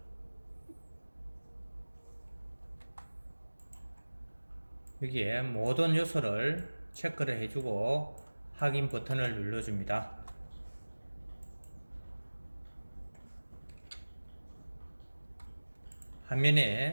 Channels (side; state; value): both; inverted; correlation -1.00